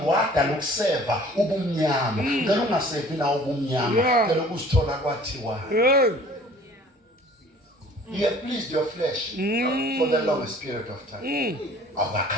wada lokuseva ubumnyama ngeke ungasevi nawo ubumnyama ngeke ukusithola kwathiwa you have pleased your flesh for the longest period of time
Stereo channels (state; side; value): normal; both; correlation 0.50